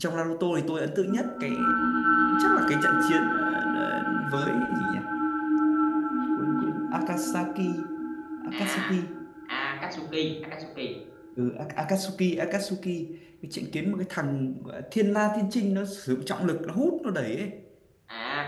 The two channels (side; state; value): both; identical; correlation 1.00